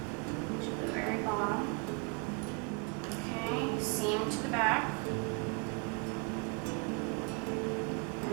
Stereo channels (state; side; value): quieter; left; 30.6 dB